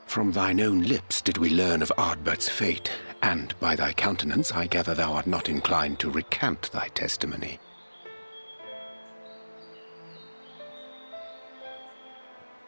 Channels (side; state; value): both; inverted; correlation -1.00